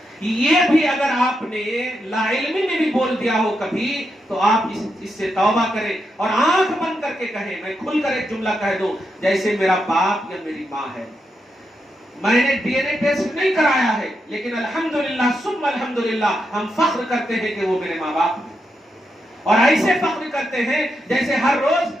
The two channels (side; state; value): both; normal; correlation 0.84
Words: یہ بھی اگر آپ نے لا علمی میں بھی بول دیا ہو کبھی، تو آپ اس سے توبہ کریں اور آنکھ بند کر کے کہیں، میں کھل کر ایک جملہ کہہ دوں، جیسے میرا باپ یا میری ماں ہے، میں نے ڈی این اے ٹیسٹ نہیں کرایا ہے، لیکن الحمدللہ ثم الحمدللہ ہم فخر کرتے ہیں کہ وہ میرے ماں باپ ہیں۔ اور ایسے فخر کرتے ہیں جیسے ہر روز